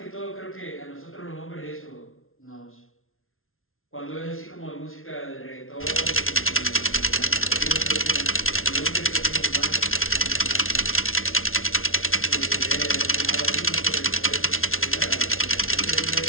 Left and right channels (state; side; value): late; right; 0.61 ms